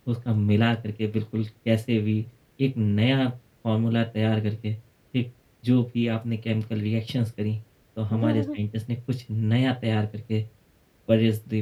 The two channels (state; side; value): identical; both; correlation 1.00